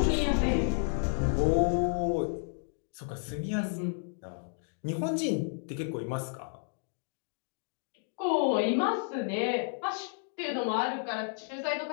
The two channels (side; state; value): right; silent; digital silence